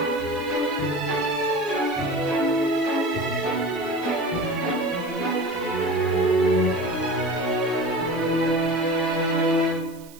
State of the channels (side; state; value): right; noise; hiss, 22 dB below the sound